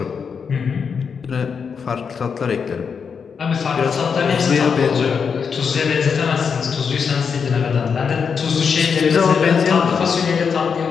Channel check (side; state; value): right; quieter; 6.2 dB